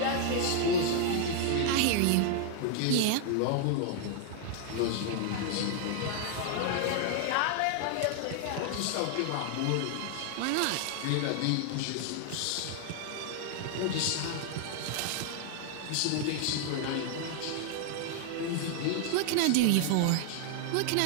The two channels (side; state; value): both; different; correlation 0.00